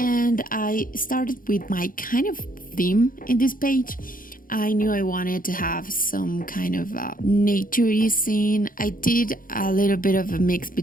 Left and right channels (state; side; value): late; right; 0.40 ms